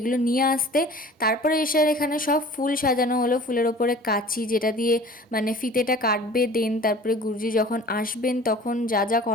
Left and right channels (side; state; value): both; normal; correlation 0.44